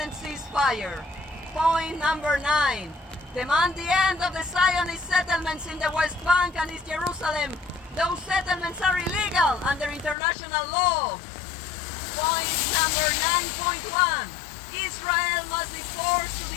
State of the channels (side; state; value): right; drops out; at 10.2 s